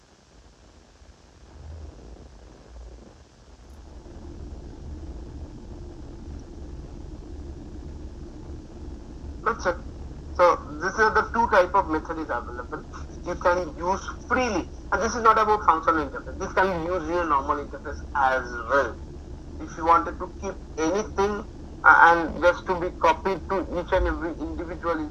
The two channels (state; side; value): identical; both; correlation 1.00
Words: That's it. So these are the two type of method is available. You can use freely, and this is not about functional interface. This can be used in a normal interface as well. If you wanted to keep anything and just to be copied to each and every individual